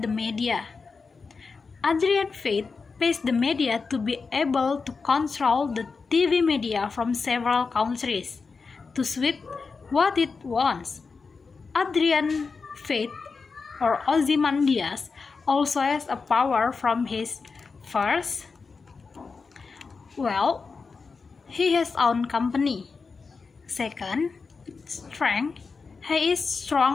the media. Adrian Fate pays the media to be able to control the TV media from several countries to suit what it wants. Adrian Fate or Ozymandias also has a power from his first, he has own company. Second, strength. He is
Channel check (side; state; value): right; quieter; 4.7 dB